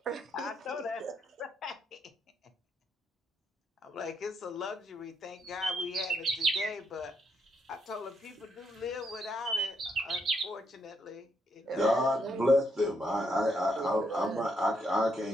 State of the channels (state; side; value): normal; both; correlation 0.75